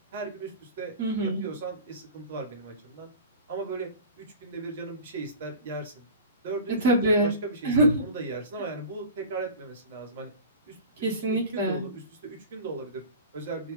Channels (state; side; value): inverted; both; correlation -0.36